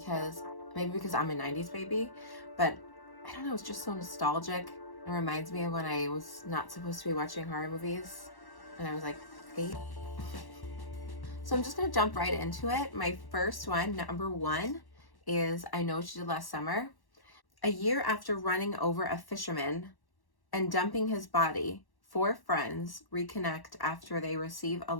I'm a 90s baby, but I don't know, it's just so nostalgic. It reminds me of when I was not supposed to be watching horror movies and I was like 8. So I'm just going to jump right into it. My first one, number 1, is I Know What You Did Last Summer. A year after running over a fisherman and dumping his body, 4 friends reconnect after they receive a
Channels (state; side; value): late; right; 1.1 ms